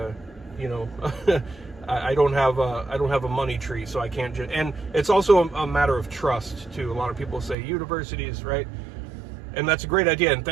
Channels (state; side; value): drops out; left; at 7.6 s